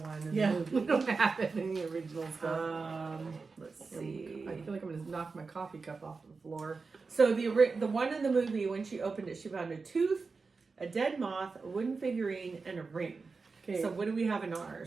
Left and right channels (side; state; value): left; quieter; 4.4 dB